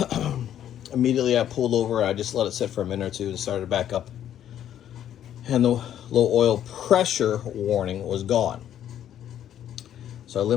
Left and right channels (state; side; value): quieter; right; 10.7 dB